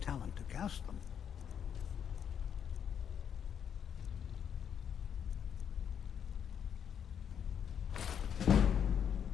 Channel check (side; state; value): right; quieter; 8.2 dB